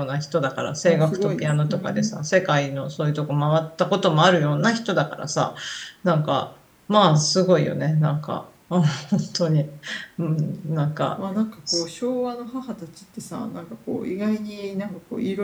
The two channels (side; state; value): both; identical; correlation 1.00